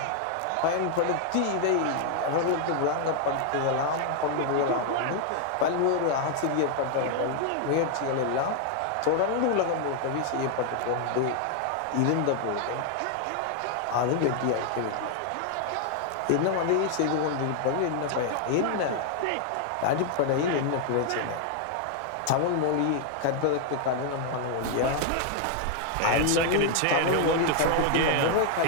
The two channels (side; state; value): both; different; correlation 0.00